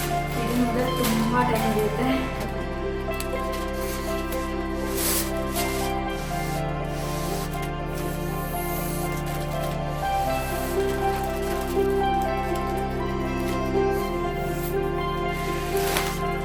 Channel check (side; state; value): both; identical; correlation 1.00